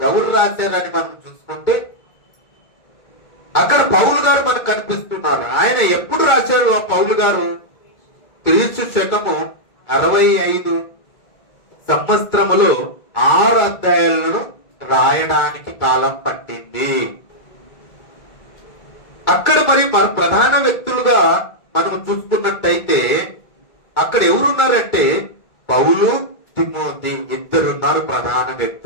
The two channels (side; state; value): right; late; 2.2 ms